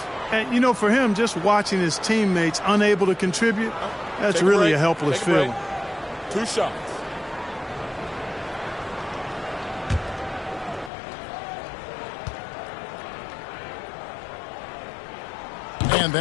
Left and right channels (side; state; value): right; drops out; at 10.9 s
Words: And, you know, for him, just watching his teammates unable to contribute, that's really a helpless feeling. 2 shots. And